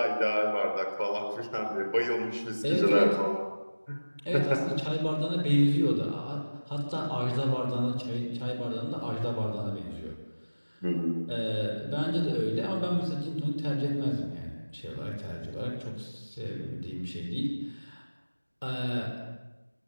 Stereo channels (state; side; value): inverted; both; correlation -1.00